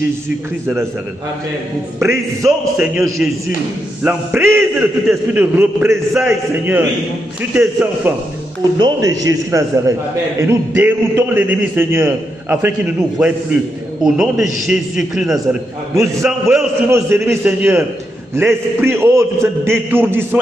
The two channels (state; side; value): normal; both; correlation 0.83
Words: de Nazareth. Nous brisons, Seigneur Jésus, l'emprise de tout esprit de représailles, Seigneur, sur tes enfants. Au nom de Jésus de Nazareth. Et nous déroutons l'ennemi, Seigneur, afin qu'il ne nous voie plus. Au nom de Jésus-Christ de Nazareth. Nous envoyons sur nos ennemis, Seigneur, l'esprit de d'étourdissement